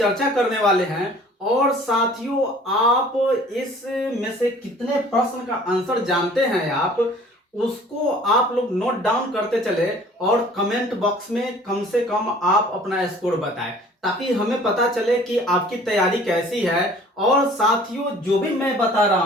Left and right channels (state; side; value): normal; both; correlation 0.50